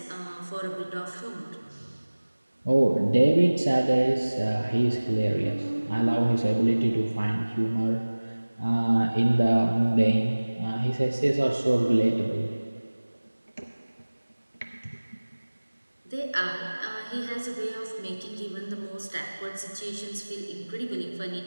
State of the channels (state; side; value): inverted; both; correlation -1.00